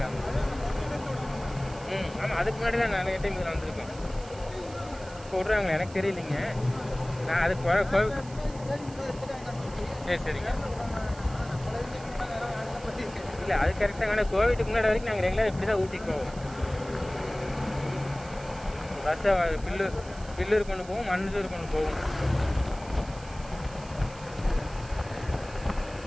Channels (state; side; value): noise; right; hiss, 20 dB below the sound